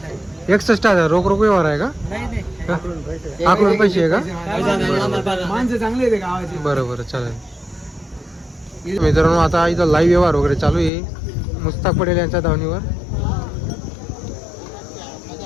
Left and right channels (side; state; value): right; drops out; at 10.9 s